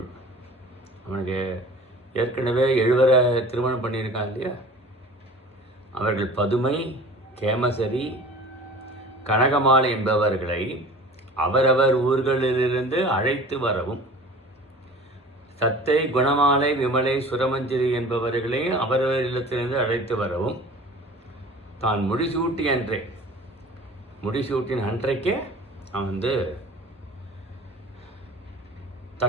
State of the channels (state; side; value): normal; both; correlation 0.42